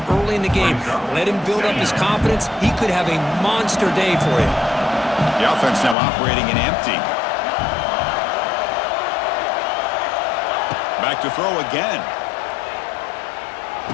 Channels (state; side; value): drops out; right; at 6.0 s